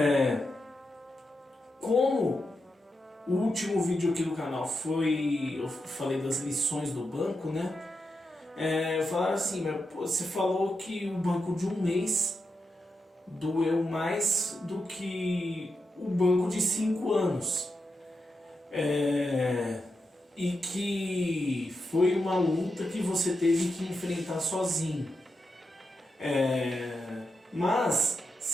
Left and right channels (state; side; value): normal; both; correlation 0.87